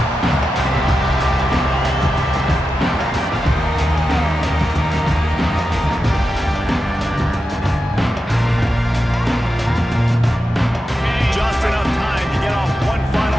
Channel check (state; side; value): normal; both; correlation 0.90